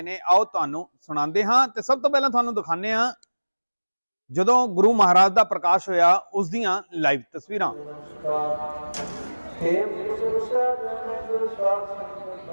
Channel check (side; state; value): both; inverted; correlation -1.00